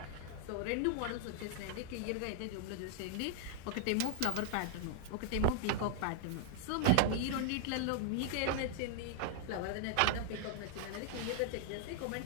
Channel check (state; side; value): different; both; correlation 0.00